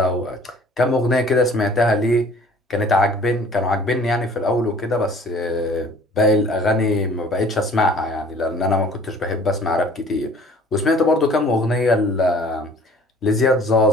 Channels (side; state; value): both; normal; correlation 0.51